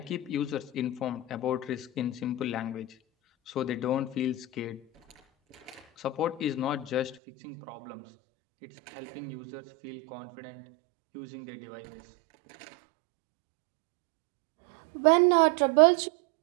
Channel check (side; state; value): left; drops out; at 7.2 s